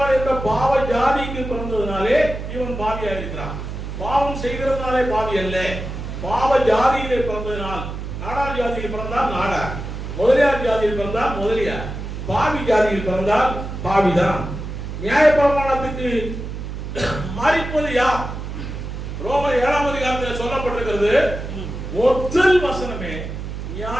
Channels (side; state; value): right; noise; hum, 7 dB below the sound